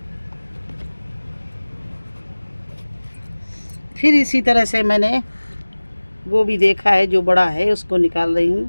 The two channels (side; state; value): both; inverted; correlation -1.00